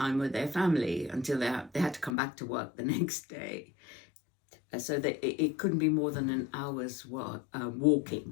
with their family until they had to come back to work the next day. So that it couldn't be more than an hour's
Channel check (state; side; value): drops out; right; at 2.1 s